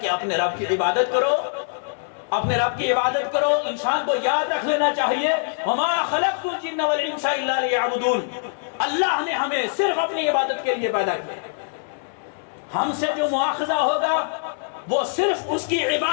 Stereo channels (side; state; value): right; silent; 63 dB below the other